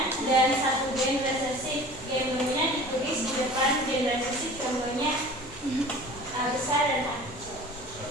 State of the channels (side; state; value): both; normal; correlation 0.42